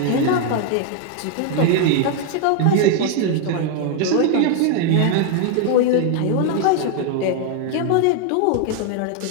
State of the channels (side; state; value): both; different; correlation 0.00